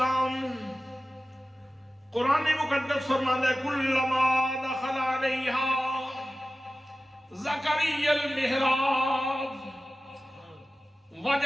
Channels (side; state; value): both; normal; correlation 0.95